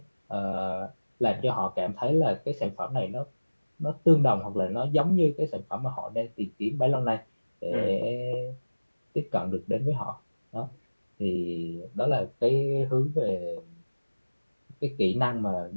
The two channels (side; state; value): both; inverted; correlation -1.00